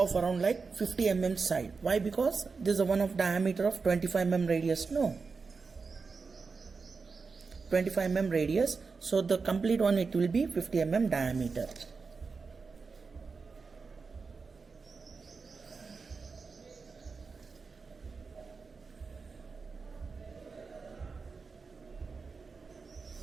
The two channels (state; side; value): quieter; left; 4.7 dB